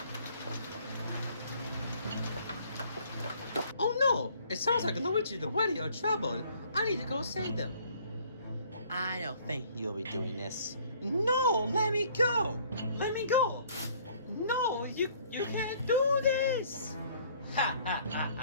Oh no! It sounds like Luigi and Woody are trouble. I need to go save them. I don't think you'll be doing this. No! Let me go! Let me go! No! You can't do this! Ha ha ha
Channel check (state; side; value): inverted; both; correlation -0.58